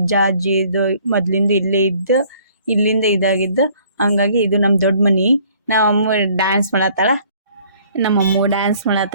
ಅಜ್ಜಿ ಇದು ಮೊದ್ಲಿಂದ ಇಲ್ಲೇ ಇದ್ದು ಇಲ್ಲಿಂದ ಇದಾಗಿದ್ದು, ಹಂಗಾಗಿ ಇದು ನಮ್ಮ ದೊಡ್ಡ ಮನೆ. ನಮ್ಮಮ್ಮ ಡ್ಯಾನ್ಸ್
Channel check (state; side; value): inverted; both; correlation -0.58